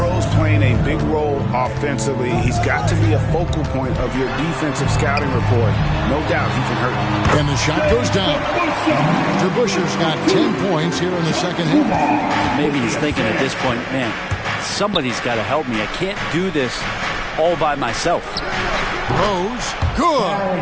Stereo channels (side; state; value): both; identical; correlation 1.00